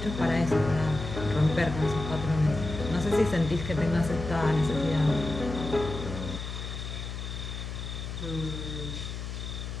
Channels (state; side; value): noise; left; hum, 7 dB below the sound